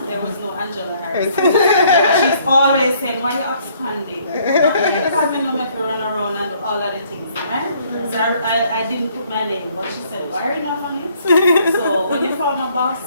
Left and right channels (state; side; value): inverted; both; correlation -0.64